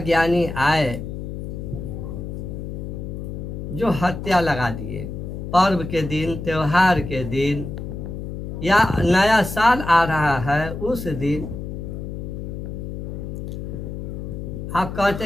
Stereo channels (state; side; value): noise; left; hum, 7 dB below the sound